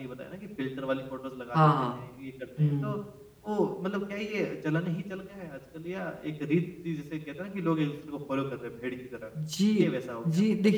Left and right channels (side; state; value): both; identical; correlation 1.00